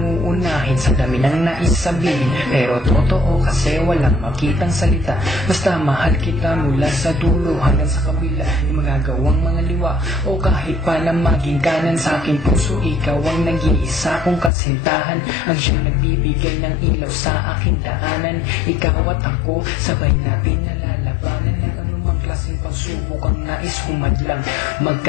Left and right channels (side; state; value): right; drops out; at 14.5 s